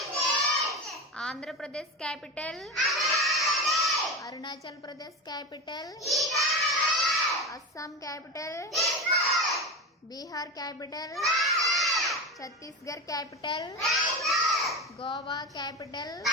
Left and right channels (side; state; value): both; normal; correlation 0.23